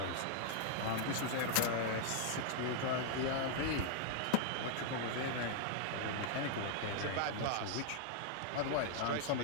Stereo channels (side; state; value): both; different; correlation -0.01